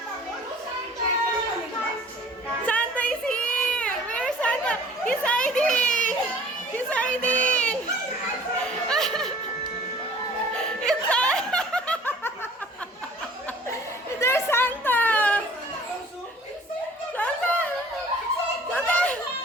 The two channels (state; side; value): normal; both; correlation 0.49